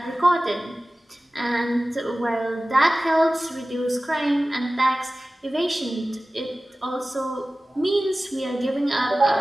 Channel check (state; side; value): normal; both; correlation 0.96